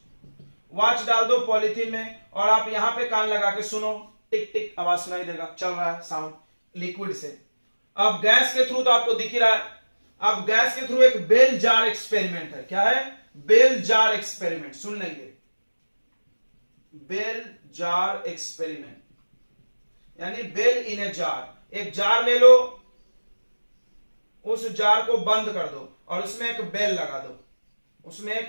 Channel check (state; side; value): inverted; both; correlation -1.00